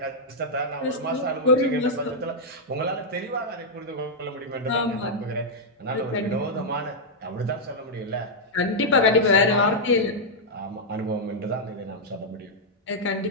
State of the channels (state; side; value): normal; both; correlation -0.05